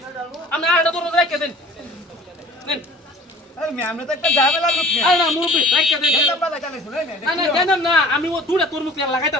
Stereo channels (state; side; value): normal; both; correlation 0.47